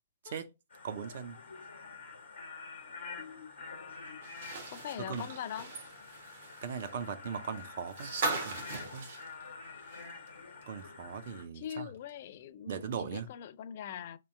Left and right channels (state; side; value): inverted; both; correlation -0.48